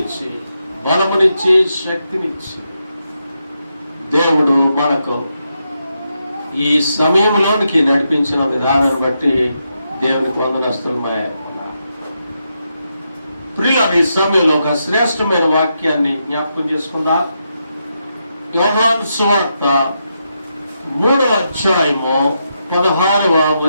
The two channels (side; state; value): both; inverted; correlation -0.83